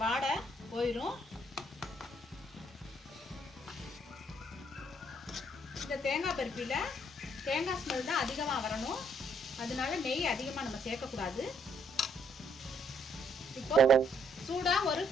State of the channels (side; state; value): both; normal; correlation 0.69